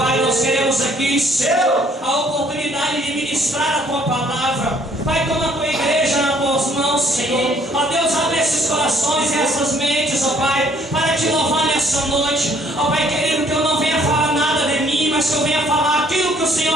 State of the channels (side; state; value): both; normal; correlation 0.62